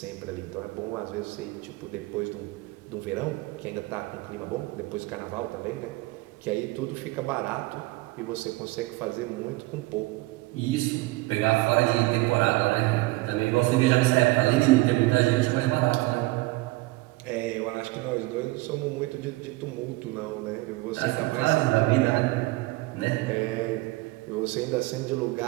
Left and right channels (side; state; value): left; quieter; 21.2 dB